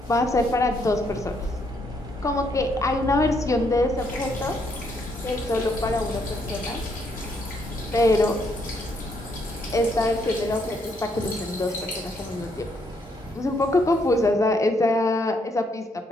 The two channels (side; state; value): both; normal; correlation 0.73